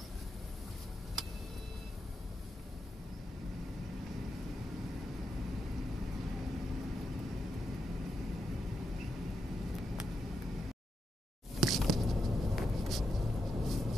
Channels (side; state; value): both; normal; correlation 0.85